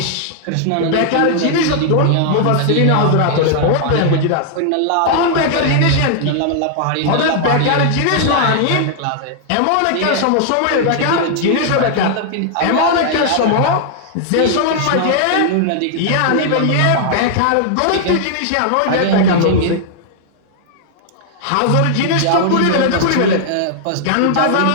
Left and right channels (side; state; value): both; different; correlation -0.01